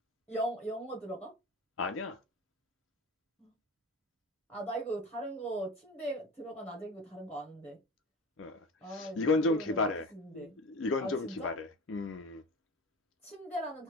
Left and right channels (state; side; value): normal; both; correlation 0.32